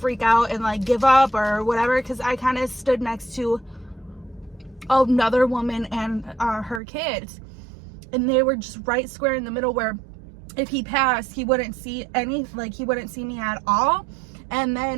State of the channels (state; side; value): drops out; left; at 6.8 s